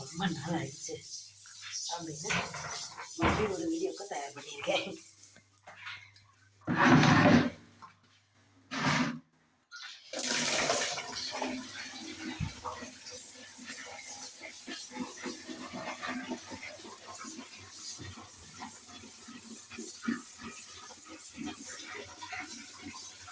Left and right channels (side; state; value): both; identical; correlation 1.00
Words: ரொம்ப நாள் ஆயிடுச்சு அப்படின்னு மறுபடியும் ஒரு வீடியோக்கு தயார் பண்ணியிருக்கேன்.